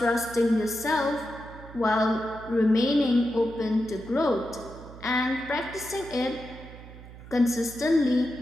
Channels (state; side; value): noise; right; hum, 16 dB below the sound